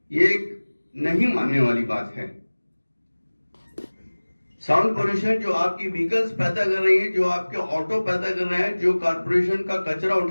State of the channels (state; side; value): inverted; both; correlation -1.00